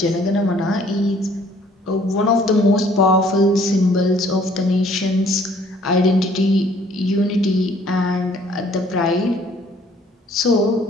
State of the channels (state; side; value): normal; both; correlation 0.59